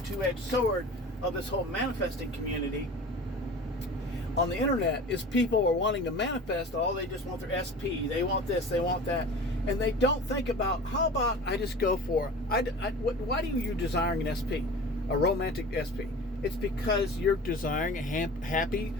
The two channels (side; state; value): both; normal; correlation 0.37